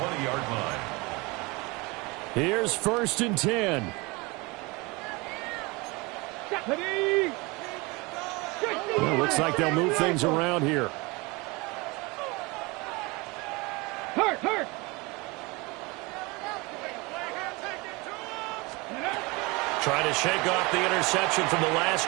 line. Here's 1st and 10. Well, looks like they'll move things around here. Hurt. Trying to shake off the interception from the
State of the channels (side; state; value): left; quieter; 25.6 dB